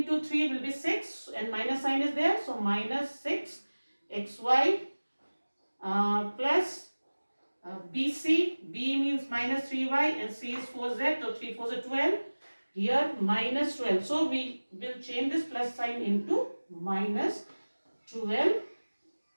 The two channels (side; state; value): both; inverted; correlation -1.00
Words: 3 will be 6 and minus sign is there. So minus 6 xy plus BC, B means minus 3y and C is 4z, so 3 4 is 12. Here minus 12. So we will change this plus sign into minus